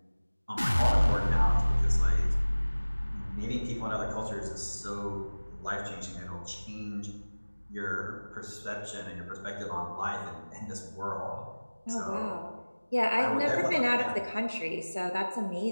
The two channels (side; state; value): both; inverted; correlation -1.00